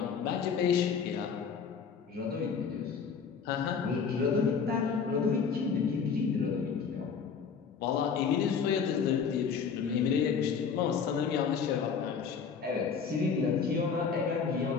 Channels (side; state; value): right; quieter; 6.2 dB